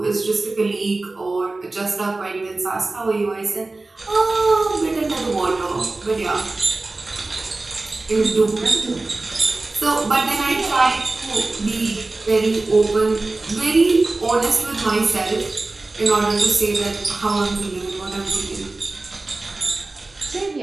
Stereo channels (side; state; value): left; quieter; 3.2 dB